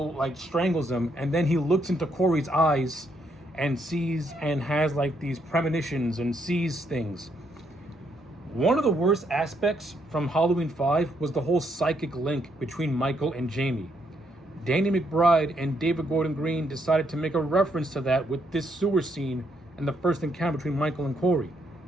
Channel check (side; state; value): both; normal; correlation 0.75